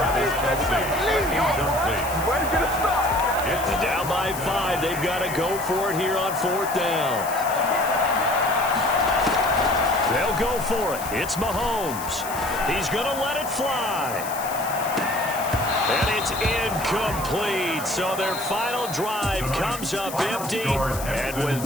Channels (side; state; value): left; noise; hiss, 11 dB below the sound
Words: And down by 5. They've got to go for it here on 4th down. They'll go for it. It's Mahomes. He's going to let it fly. And it's incomplete. So their final drive comes up empty. And with